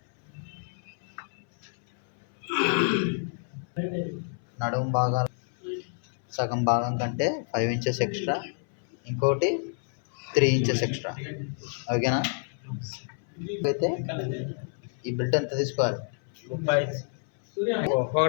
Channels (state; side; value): silent; right; 59 dB below the other